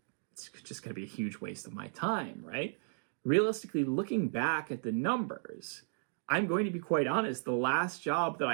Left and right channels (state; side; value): silent; left; digital silence